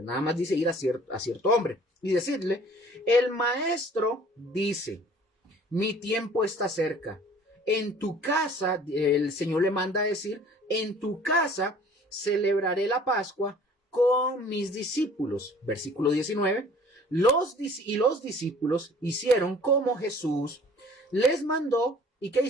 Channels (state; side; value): normal; both; correlation 0.51